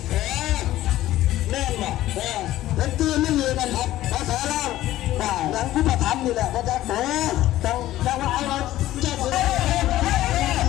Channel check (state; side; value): quieter; right; 14.7 dB